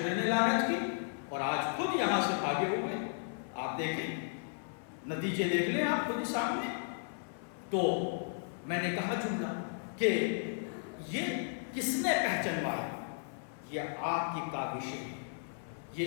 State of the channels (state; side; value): silent; right; 55 dB below the other